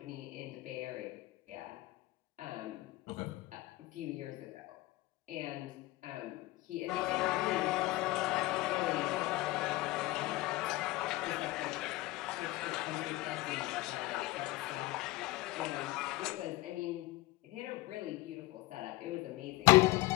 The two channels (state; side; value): quieter; right; 19.4 dB